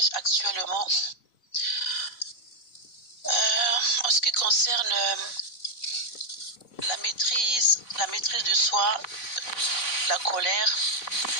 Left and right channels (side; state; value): right; late; 4.0 ms